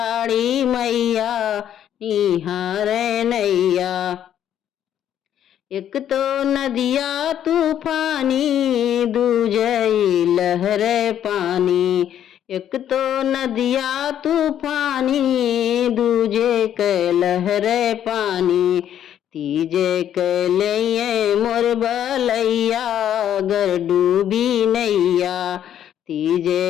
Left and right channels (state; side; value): quieter; right; 10.3 dB